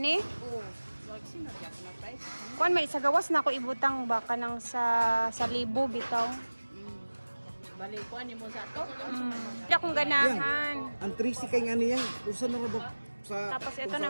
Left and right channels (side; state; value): both; inverted; correlation -1.00